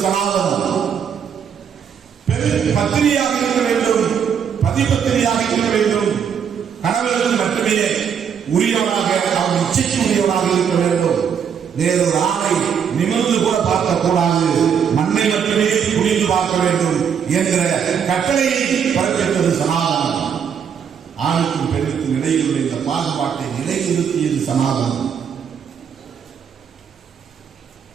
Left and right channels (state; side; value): quieter; left; 7.6 dB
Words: சனாதனம், பெண் பத்தினியாக இருக்க வேண்டும், பதிபத்தினியாக இருக்க வேண்டும், கணவர்கள் மட்டுமே உரியவனாக, அவன் இச்சைக்கு உரியவனாக இருக்க வேண்டும், வேறொரு ஆணை நிமிர்ந்து கூட பார்க்கக்கூடாது, மண்ணை மட்டுமே குனிந்து பார்க்க வேண்டும் என்கிற கட்டளையை பிறப்பித்தது சனாதனம். ஆணுக்கும் பெண்ணுக்கும் இடையில் உள்ள இந்த பாகுபாட்டை நிலைநிறுத்தியது சனாதனம்.